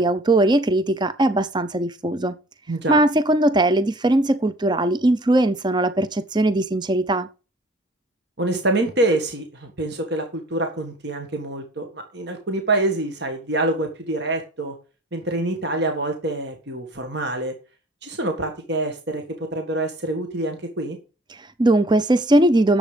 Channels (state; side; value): normal; both; correlation 0.51